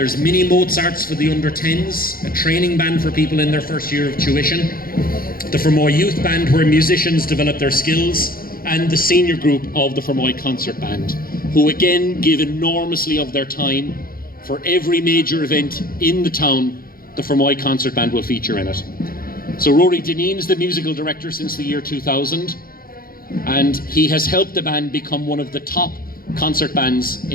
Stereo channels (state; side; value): late; right; 0.42 ms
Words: mini Mozarts for the under 10s, a training band for people in their first year of tuition, the Fermoy Youth Band where musicians develop their skills, and the senior group of the Fermoy Concert Band, who again give enormously of their time. For every major event in the town, the Fermoy Concert Band will feature in it. So Rory Dineen is the musical director since the year 2000, and he has helped the band become one of the top concert bands